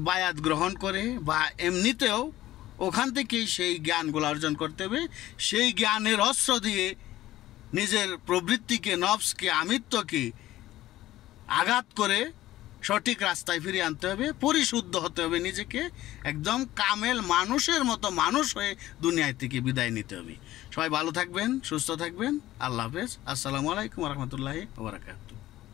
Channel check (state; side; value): quieter; right; 15.2 dB